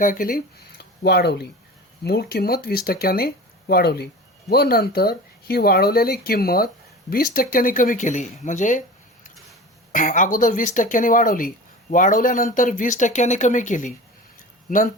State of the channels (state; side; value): normal; both; correlation 0.35